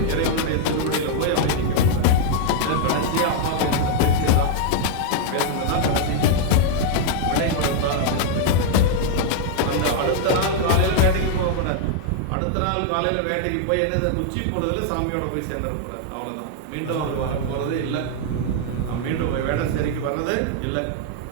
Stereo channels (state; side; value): different; both; correlation 0.00